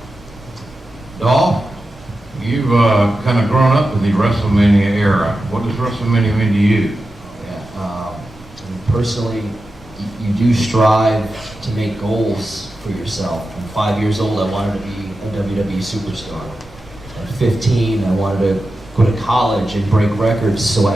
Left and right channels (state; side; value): noise; right; rumble, 26 dB below the sound